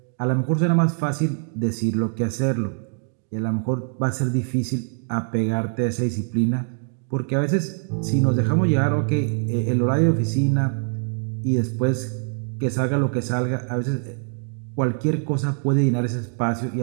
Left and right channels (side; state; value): left; silent; 55 dB below the other